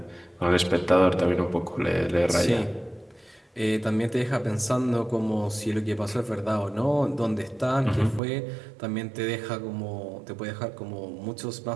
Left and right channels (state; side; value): drops out; left; at 8.2 s